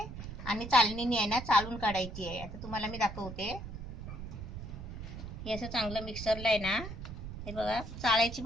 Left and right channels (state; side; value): noise; right; rumble, 9 dB below the sound